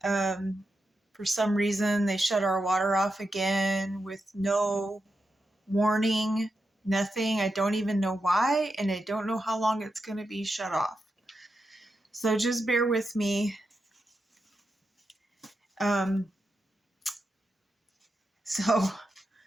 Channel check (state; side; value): normal; both; correlation 0.87